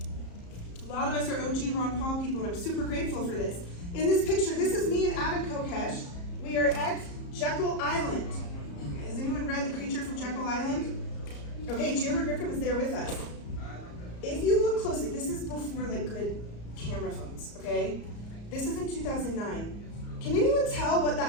A lot of us are OG Ron Paul people, and I'm super grateful for this. In this picture, this is me and Adam Kokesh. We are at Jekyll Island. Has anyone read The Creature from Jekyll Island? Okay, Giorgio Griffin was there with us. If you look closely, this is before like good camera phones, okay? This is in 2009. Can anyone tell what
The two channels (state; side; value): late; right; 34 ms